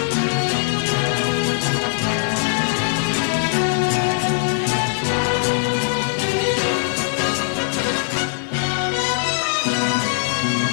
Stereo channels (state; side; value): silent; right; digital silence